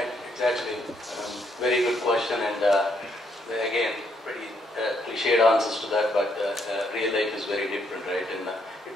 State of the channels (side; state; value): both; normal; correlation 0.73